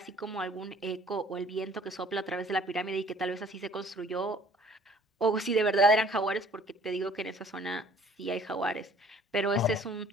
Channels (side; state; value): both; normal; correlation 0.55